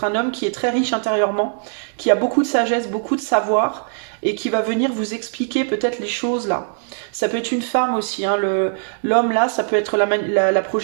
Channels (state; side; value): silent; left; 65 dB below the other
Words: un homme qui est très riche intérieurement, qui a beaucoup de sagesse, beaucoup de savoir, et qui va venir vous expliquer peut-être les choses là. Ça peut être une femme aussi, hein, l'homme là, ça peut être la